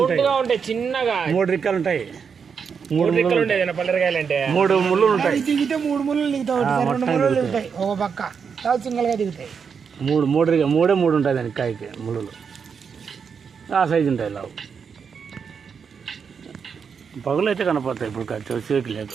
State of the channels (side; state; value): left; quieter; 6.3 dB